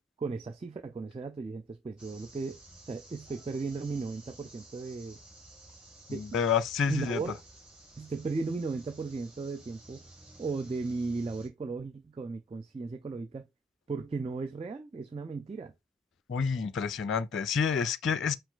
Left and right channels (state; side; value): normal; both; correlation 0.59